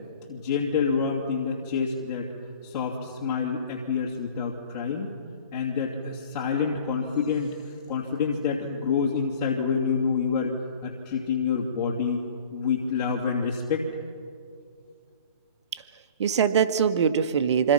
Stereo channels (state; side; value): inverted; both; correlation -0.45